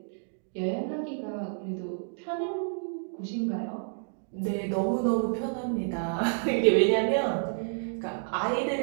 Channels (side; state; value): left; silent; digital silence